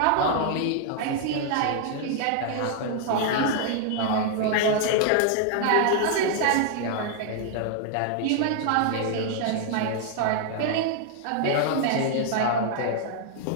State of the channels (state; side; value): different; both; correlation 0.00